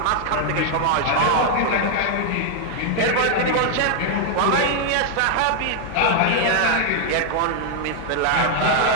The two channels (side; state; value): both; different; correlation 0.00